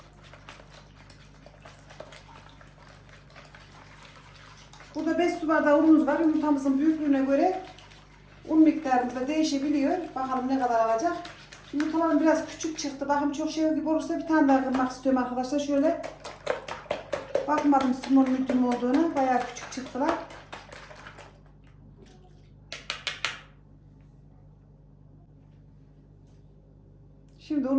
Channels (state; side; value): identical; both; correlation 1.00